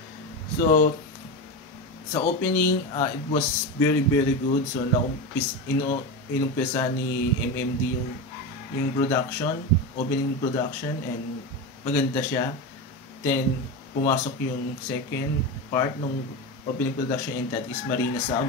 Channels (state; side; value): normal; both; correlation 0.19